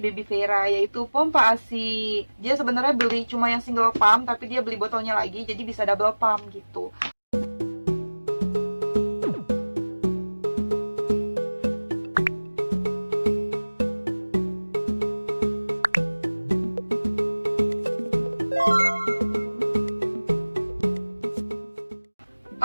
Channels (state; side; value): inverted; both; correlation -1.00